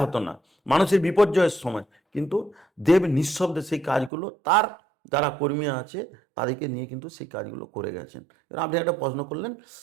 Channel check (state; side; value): drops out; left; at 4.1 s